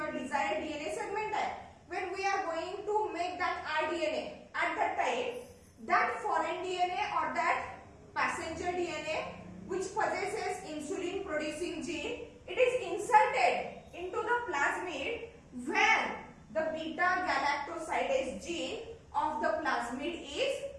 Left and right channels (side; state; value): both; identical; correlation 1.00